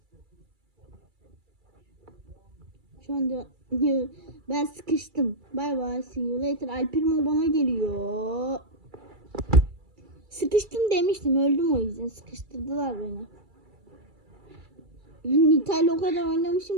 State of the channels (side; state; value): left; late; 2.3 ms